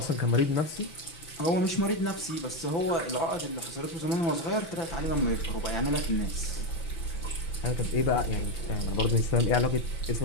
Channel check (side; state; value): right; late; 6.0 ms